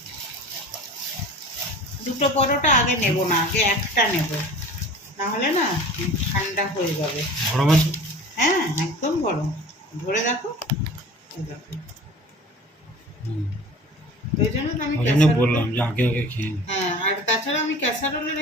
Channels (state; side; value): normal; both; correlation 0.41